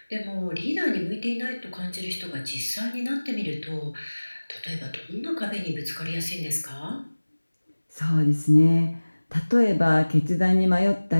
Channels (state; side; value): inverted; both; correlation -1.00